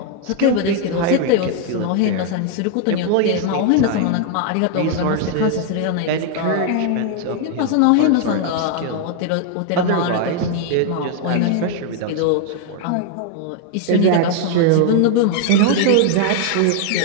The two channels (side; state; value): both; different; correlation 0.00